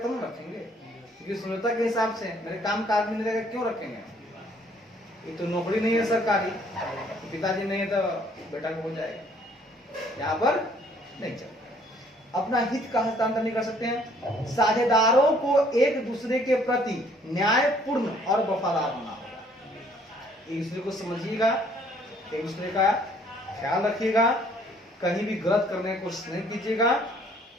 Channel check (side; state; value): both; normal; correlation 0.61